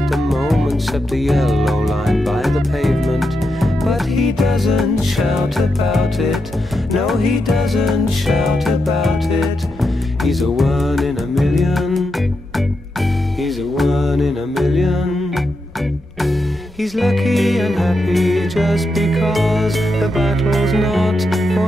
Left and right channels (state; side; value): normal; both; correlation 0.85